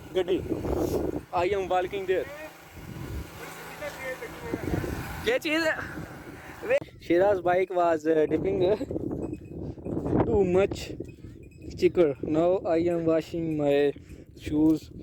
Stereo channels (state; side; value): identical; both; correlation 1.00